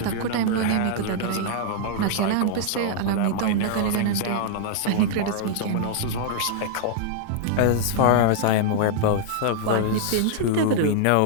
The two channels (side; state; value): both; different; correlation -0.01